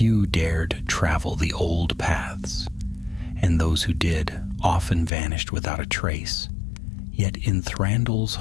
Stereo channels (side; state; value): right; drops out; at 5.1 s